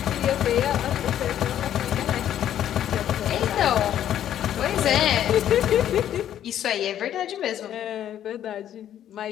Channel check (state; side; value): quieter; right; 10.9 dB